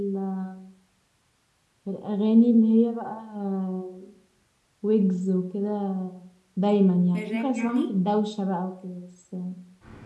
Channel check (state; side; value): identical; both; correlation 1.00